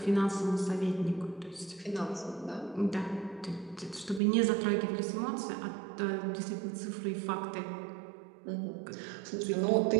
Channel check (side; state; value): left; drops out; at 4.2 s